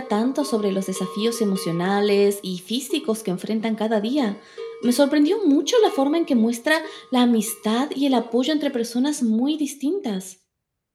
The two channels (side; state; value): both; identical; correlation 1.00